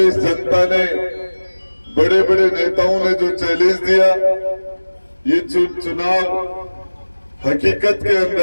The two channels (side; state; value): both; inverted; correlation -1.00